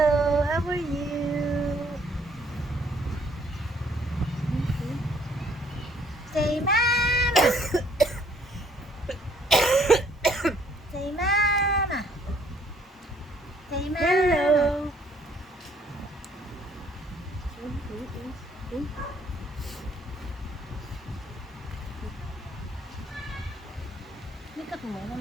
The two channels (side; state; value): both; normal; correlation 0.64